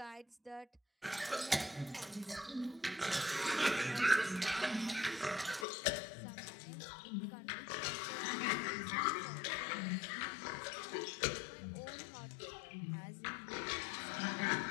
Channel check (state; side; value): drops out; right; at 5.7 s